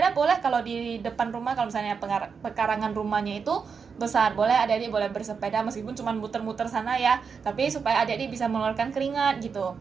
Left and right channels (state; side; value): quieter; left; 5.8 dB